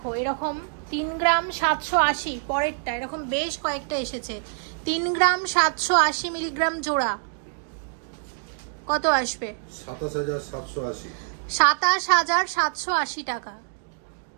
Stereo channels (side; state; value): left; silent; digital silence